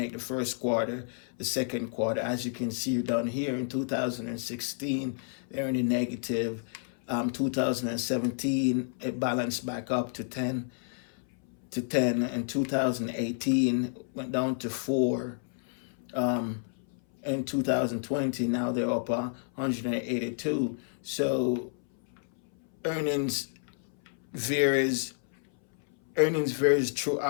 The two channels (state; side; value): silent; right; 58 dB below the other